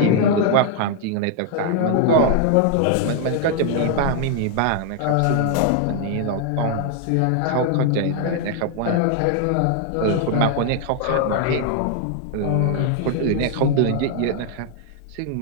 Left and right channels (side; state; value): both; different; correlation 0.00